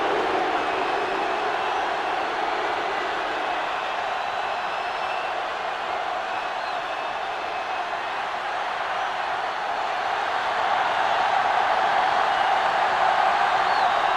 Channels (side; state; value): both; identical; correlation 1.00